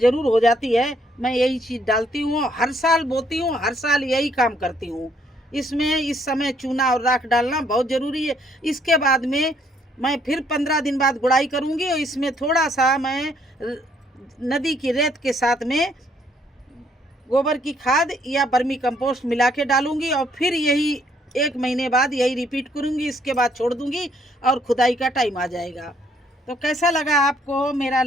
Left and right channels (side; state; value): both; normal; correlation 0.68